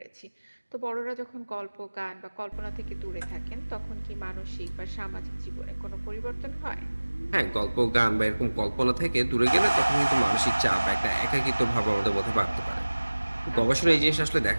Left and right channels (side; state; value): both; inverted; correlation -1.00